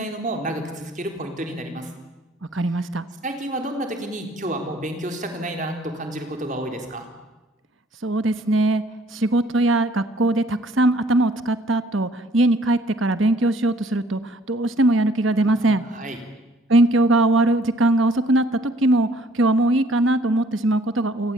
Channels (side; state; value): both; normal; correlation 0.60